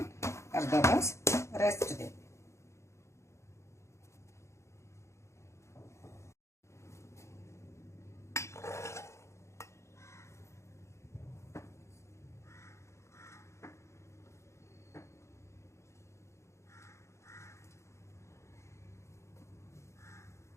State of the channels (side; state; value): right; late; 0.14 ms